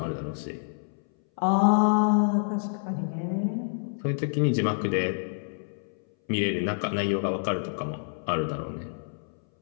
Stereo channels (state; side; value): silent; right; 60 dB below the other